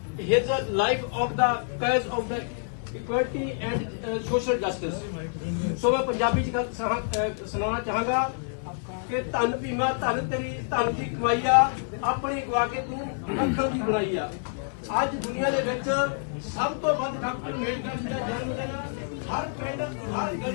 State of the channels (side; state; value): right; silent; 60 dB below the other